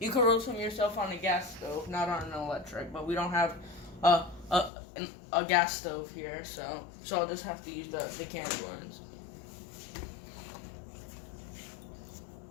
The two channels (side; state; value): right; drops out; at 4.7 s